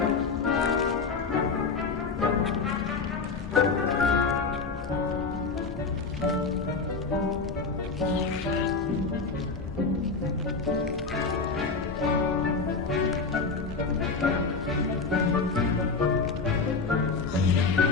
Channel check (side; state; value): right; quieter; 4.4 dB